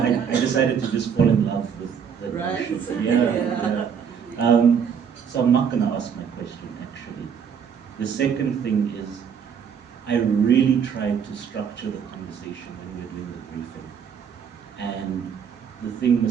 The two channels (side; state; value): left; quieter; 7.3 dB